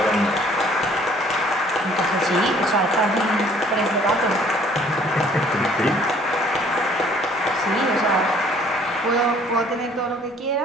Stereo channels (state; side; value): normal; both; correlation 0.57